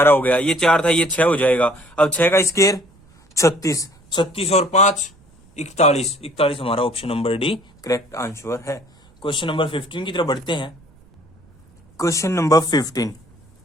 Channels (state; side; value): noise; right; rumble, 29 dB below the sound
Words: हो गया, ये 4 था ये 6 हो जाएगा। अब 6 का स्क्वायर 36, 36 और 5 41, 41 हमारा option number D correct answer है। क्वेश्चन नंबर 15 की तरफ बढ़ते हैं। Question number 15,